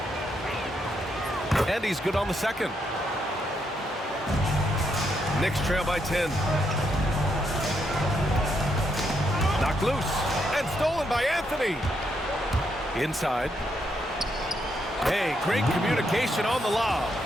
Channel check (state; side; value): normal; both; correlation 0.78